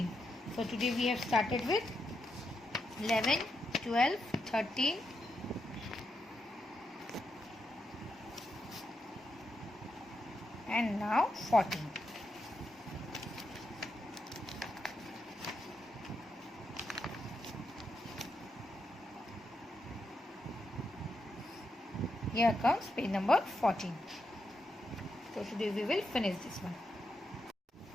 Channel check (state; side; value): normal; both; correlation 0.84